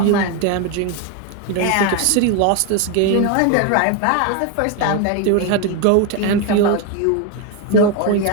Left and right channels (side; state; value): both; different; correlation 0.02